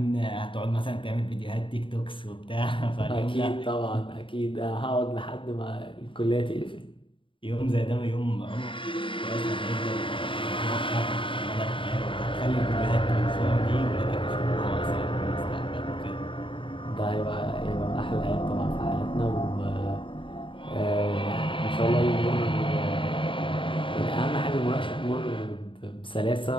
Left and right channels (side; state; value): right; late; 0.25 ms